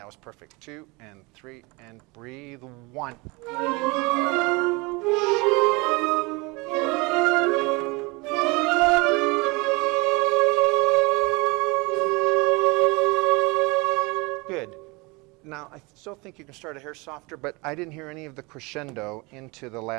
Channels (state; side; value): quieter; left; 26.3 dB